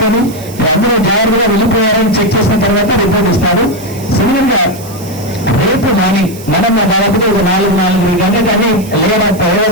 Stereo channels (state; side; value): noise; right; hiss, 18 dB below the sound